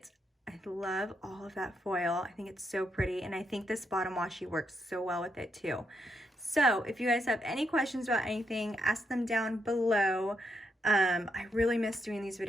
I love all of that foil. I think it's so pretty, and I think this bottom washi works so well with it too. So if you guys have any questions about anything, ask them down below. I really miss doing these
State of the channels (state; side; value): normal; both; correlation 0.80